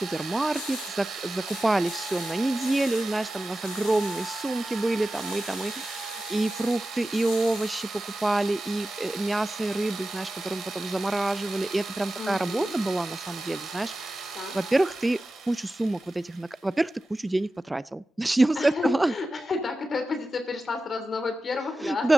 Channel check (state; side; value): normal; both; correlation 0.94